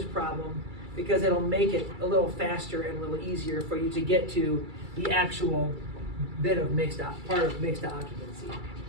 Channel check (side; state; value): left; late; 2.3 ms